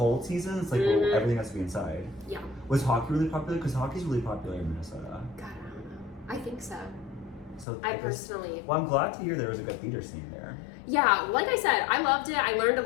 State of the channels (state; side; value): drops out; right; at 7.7 s